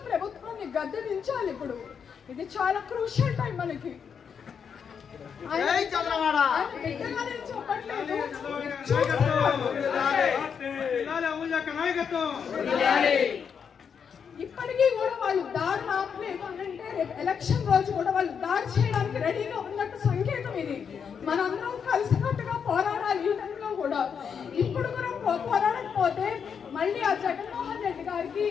ప్రభుత్వాన్ని గద్దె దించాలి. ఇప్పుడు ఇది చాలా క్రూషియల్ టైం మనకి. చెప్పట్లేదు, ఇప్పటికీ కూడా వాళ్ళు దాడి ఆపలేదు అంటే రేపు ఎలక్షన్ రోజు కూడా వాళ్ళు దాడి చేయడానికి రెడీగా ఉన్నట్టు సంకేతం ఇది. మనందరం కలిసికట్టుగా పోరాడాలి. ఈ టైంలో కూడా ఇప్పుడు కూడా పోరాడకపోతే మళ్ళీ ఆ జగన్మోహన్ రెడ్డి గారికి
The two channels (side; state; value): right; quieter; 6.9 dB